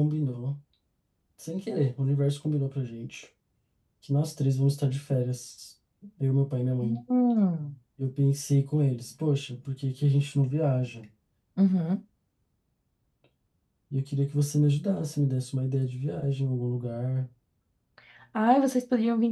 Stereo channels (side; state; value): both; identical; correlation 1.00